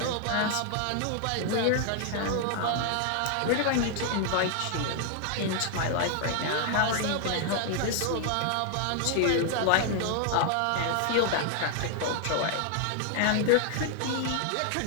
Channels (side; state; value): both; different; correlation 0.00